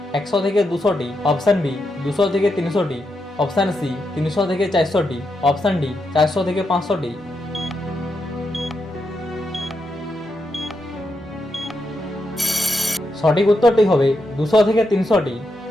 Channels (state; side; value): normal; both; correlation 0.84